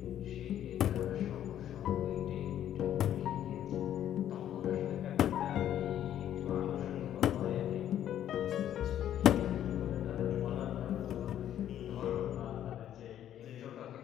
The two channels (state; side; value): quieter; right; 11.0 dB